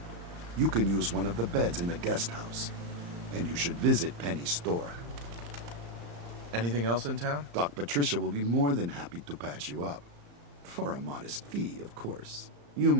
You can use one of the beds in the guest house, and you should visit Penny's store. Anything else in town? Doc Patricia will be more than happy to patch you up. For a modest fee, of course. You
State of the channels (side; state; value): left; late; 35 ms